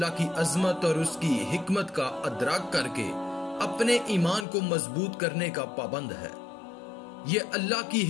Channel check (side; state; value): right; drops out; at 4.5 s